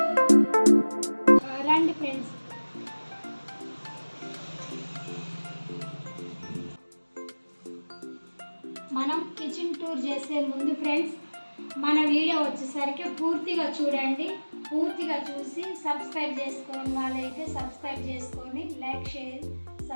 రండి ఫ్రెండ్స్. మనం కిచెన్ టూర్ చేసే ముందు ఫ్రెండ్స్ మన వీడియో వచ్చేసరికి పూర్తిగా చూడండి. పూర్తిగా చూసి సబ్స్క్రైబ్ చేసుకోని వాళ్ళైతే సబ్స్క్రైబ్ చేసుకొని లైక్ షేర్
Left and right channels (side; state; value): both; inverted; correlation -1.00